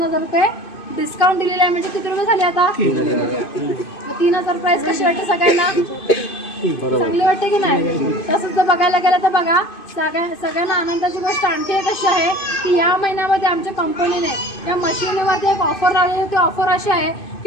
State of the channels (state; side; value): late; right; 2.5 ms